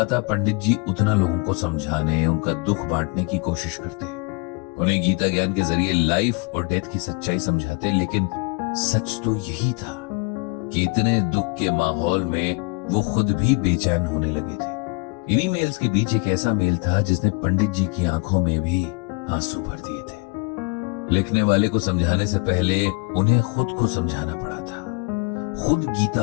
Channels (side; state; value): right; quieter; 30.4 dB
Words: पंडित जी उतना लोगों को समझाने, उनका दुख बांटने की कोशिश करते। उन्हें गीता ज्ञान के जरिए लाइफ और डेथ की सच्चाई समझाते, लेकिन सच तो यही था कि इतने दुख के माहौल में वो खुद भी बेचैन होने लगे थे। इन्हीं मेल्स के बीच एक ऐसा मेल था जिसने पंडित जी की आंखों में भी आंसू भर दिए थे। लिखने वाले को समझाने से पहले उन्हें खुद को समझाना पड़ा था, खुद